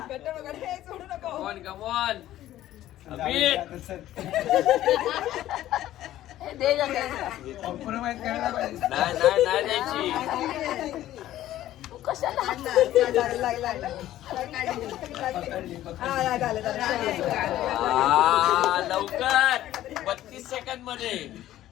Come on come on. अमित नाही नाही नाही द्यायची. लवकर 32 सेकंद मध्ये.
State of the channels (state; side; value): quieter; right; 13.7 dB